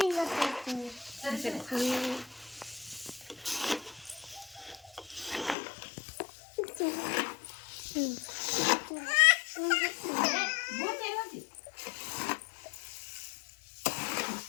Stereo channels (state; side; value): drops out; right; at 5.6 s